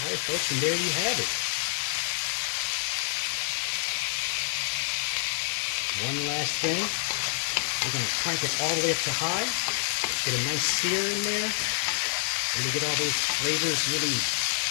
folks, and there you have it. One last thing. We're going to crank it all the way up to high, get a nice sear in there, and we get all those flavors really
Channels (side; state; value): right; silent; 60 dB below the other